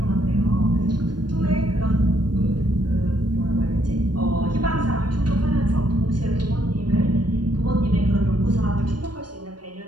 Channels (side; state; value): left; late; 0.71 ms